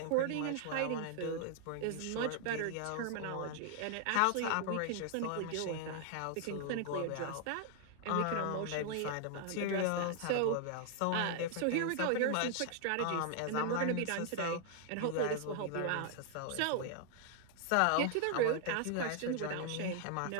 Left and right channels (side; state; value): both; different; correlation 0.00